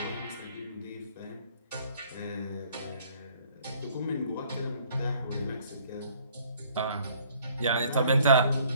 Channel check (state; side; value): inverted; both; correlation -0.59